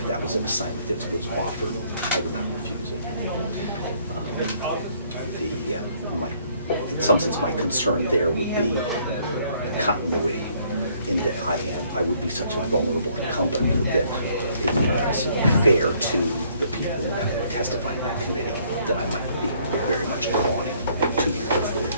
that was an assignment that was offered, I would not refuse it. In some sense, my concern there would be continuity, in that I would be such a vulnerable incumbent that it would not necessarily be fair to the people who have to testify in that committee that I might be very much gone in 2 years or 4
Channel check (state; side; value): inverted; both; correlation -0.64